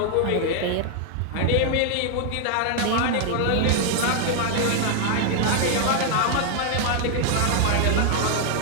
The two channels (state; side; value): different; both; correlation 0.00